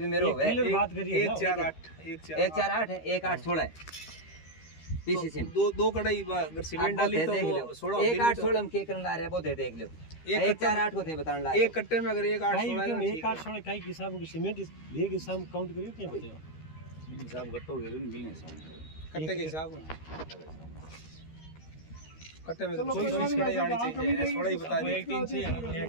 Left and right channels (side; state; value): right; late; 13 ms